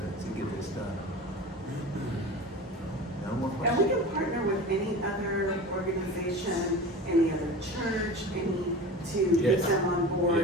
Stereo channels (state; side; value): normal; both; correlation 0.33